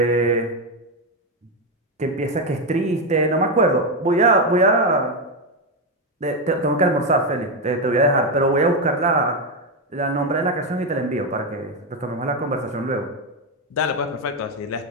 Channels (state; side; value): normal; both; correlation 0.07